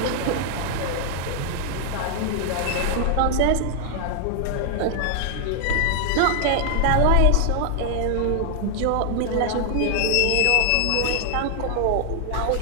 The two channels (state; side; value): different; both; correlation 0.00